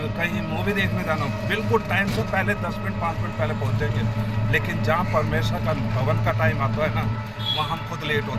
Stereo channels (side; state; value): both; identical; correlation 1.00